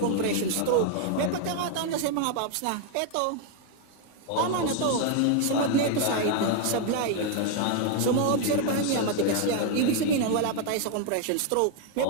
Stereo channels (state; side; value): different; both; correlation 0.00